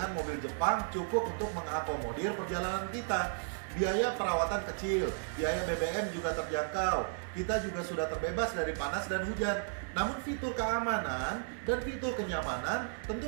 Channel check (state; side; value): silent; left; 55 dB below the other